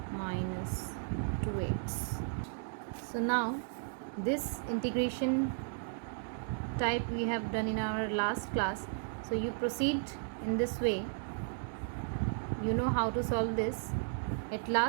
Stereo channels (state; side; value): silent; left; digital silence